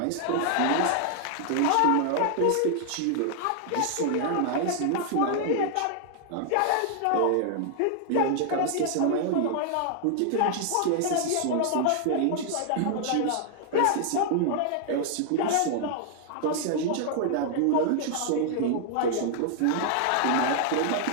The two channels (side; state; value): both; different; correlation -0.01